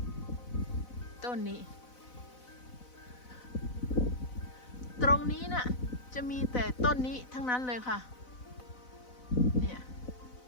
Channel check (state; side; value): late; right; 4.0 ms